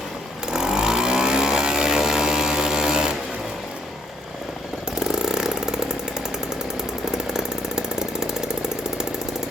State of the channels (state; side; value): normal; both; correlation 0.67